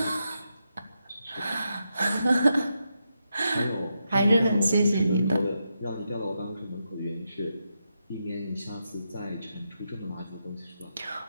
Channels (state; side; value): inverted; both; correlation -0.85